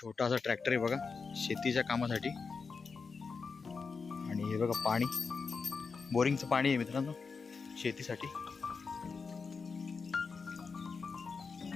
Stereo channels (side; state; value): right; quieter; 5.0 dB